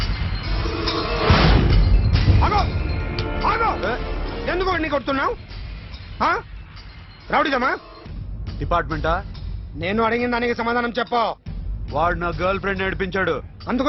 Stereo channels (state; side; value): identical; both; correlation 1.00